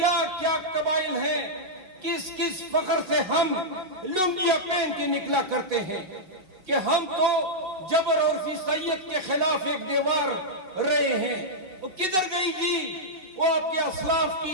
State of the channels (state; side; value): late; left; 5.4 ms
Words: کیا قبائل ہیں، کس کس فخر سے ہم لنگیاں پہن کے نکلا کرتے ہیں کہ ہم تو جبر اور فیصیت کے خلاف ایک دیوار رہے ہیں۔ وہ کدھر گئی جی وہ آپ کے اسلاف